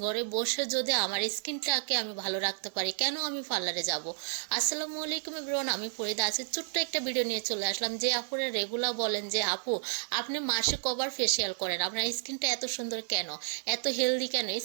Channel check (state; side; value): silent; left; 57 dB below the other